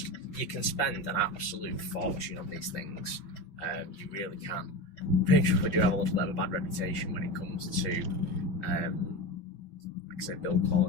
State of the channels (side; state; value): right; late; 5.7 ms